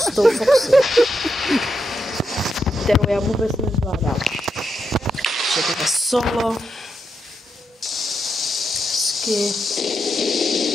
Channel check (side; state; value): both; normal; correlation 0.84